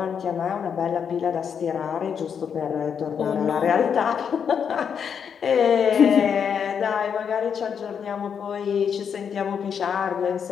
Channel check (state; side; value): quieter; right; 7.3 dB